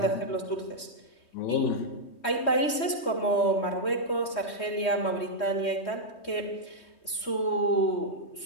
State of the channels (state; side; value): late; right; 3.2 ms